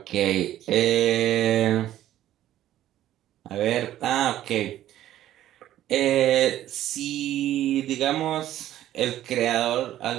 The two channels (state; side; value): quieter; left; 12.9 dB